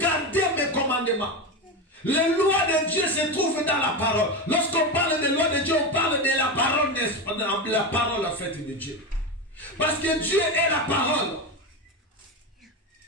mes commandements. Les lois de Dieu se trouvent dans la parole. Lorsqu'on parle des lois de Dieu, on parle de la parole en fait de Dieu. Parce que Dieu est la parole.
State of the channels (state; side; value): normal; both; correlation 0.17